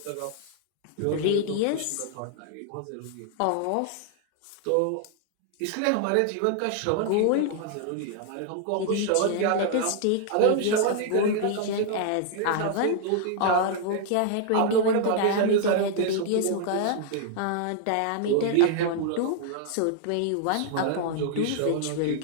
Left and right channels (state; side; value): different; both; correlation -0.01